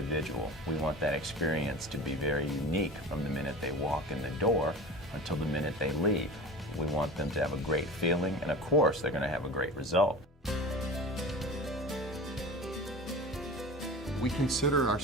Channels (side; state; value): both; normal; correlation 0.34